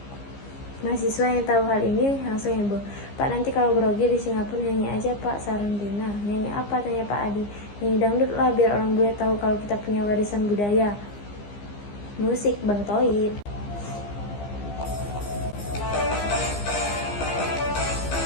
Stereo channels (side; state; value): right; late; 15 ms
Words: Mahasiswa yang tahu hal ini langsung heboh. Pak, nanti kalau grogi di Singapura nyanyi aja Pak, saran Dina. Nyanyi apa, tanya Pak Adi. Nyanyi dangdut lah biar orang bule tahu kalau kita punya warisan budaya. Musik Bang Toib.